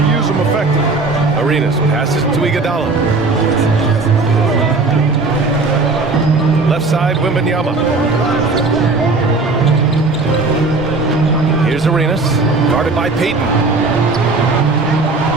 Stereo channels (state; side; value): quieter; left; 3.6 dB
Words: them effectively. Arenas passes to Iguodala. Left side, Wembanyama. Here's Arenas, guarded by Payton.